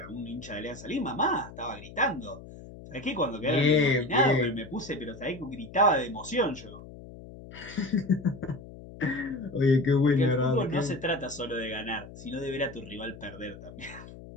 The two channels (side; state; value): left; noise; hum, 16 dB below the sound